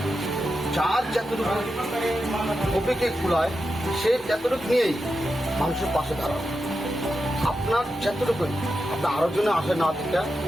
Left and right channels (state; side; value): normal; both; correlation 0.89